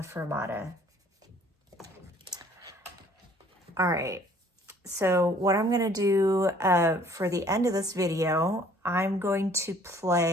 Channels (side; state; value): both; normal; correlation 0.57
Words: fermata. All right, so what I'm gonna do for the end of this video, I'm going to